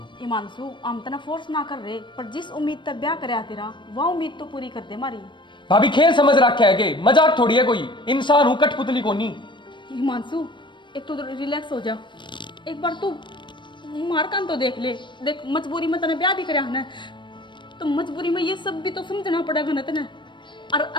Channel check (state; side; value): late; right; 0.23 ms